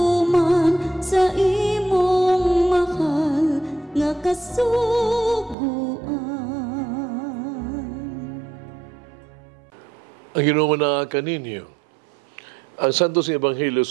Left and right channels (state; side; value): drops out; left; at 5.6 s